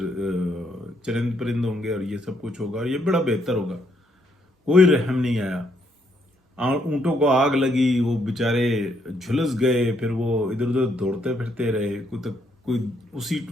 چرند پرند ہوں گے، اور یہ سب کچھ ہوگا، اور یہ بڑا بہتر ہوگا۔ کوئی رحم نہیں آیا، اونٹوں کو آگ لگی، وہ بیچارے جھلس گئے، پھر وہ ادھر ادھر دوڑتے پھرتے رہے، کوئی اسی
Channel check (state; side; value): normal; both; correlation 0.73